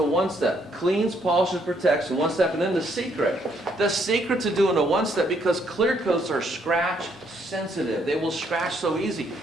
Cleans, polishes, protects in 1 step. And then the secret to doing a 1-step, because clear coats are scratch sensitive. They will scratch so easy.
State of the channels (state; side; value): normal; both; correlation 0.70